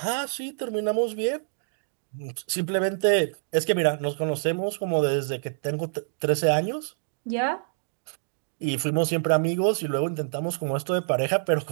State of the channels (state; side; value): silent; left; digital silence